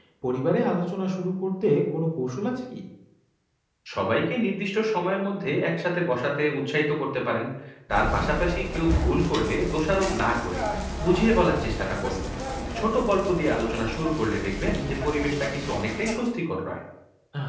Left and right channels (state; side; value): identical; both; correlation 1.00